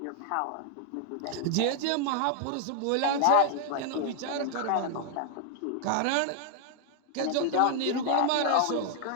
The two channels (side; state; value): both; different; correlation 0.00